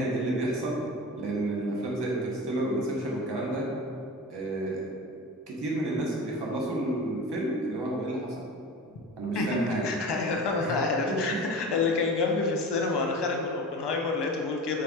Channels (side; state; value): both; normal; correlation 0.33